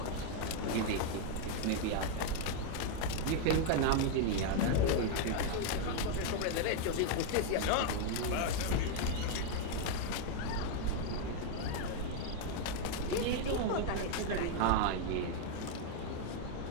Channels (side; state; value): both; different; correlation 0.00